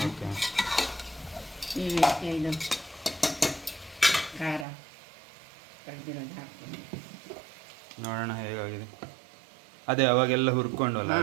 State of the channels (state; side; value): drops out; left; at 4.7 s